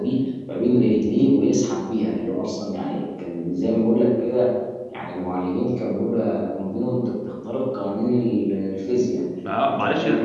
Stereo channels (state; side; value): identical; both; correlation 1.00